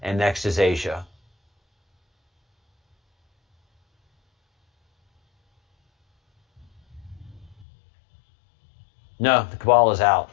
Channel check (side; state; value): right; drops out; at 7.7 s